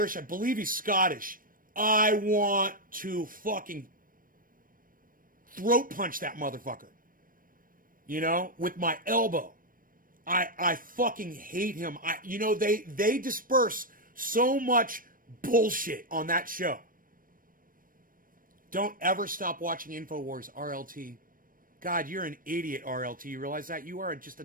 I believe he's Scottish. I want to fucking throat punch that motherfucker. You know, with my elbow. I fucking hate him. They disperse so much bullshit on that show. Don't ever stop watching InfoWars, RLT. God, you're an idiot, RLT. You realize that? You are just a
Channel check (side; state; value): left; late; 0.41 ms